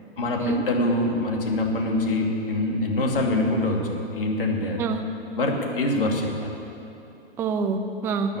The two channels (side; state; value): both; normal; correlation 0.01